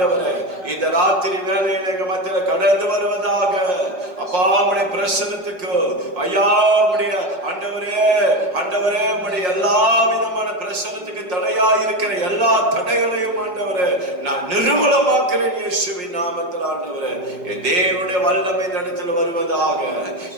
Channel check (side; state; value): left; late; 5.5 ms